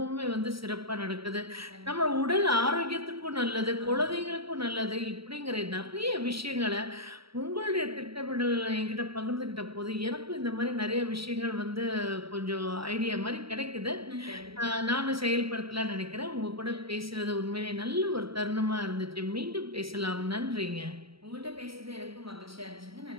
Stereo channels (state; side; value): late; left; 0.75 ms